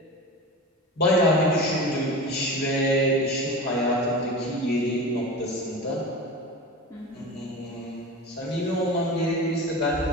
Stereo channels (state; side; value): normal; both; correlation 0.30